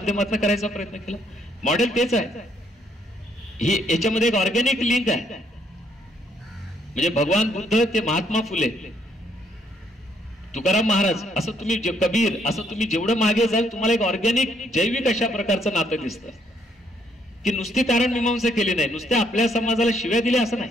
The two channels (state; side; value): normal; both; correlation 0.69